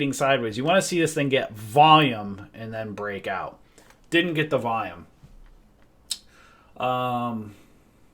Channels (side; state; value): both; identical; correlation 1.00